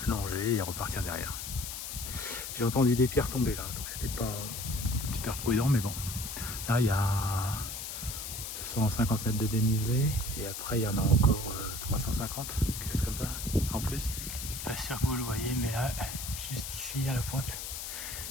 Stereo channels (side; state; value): left; noise; hiss, 6 dB below the sound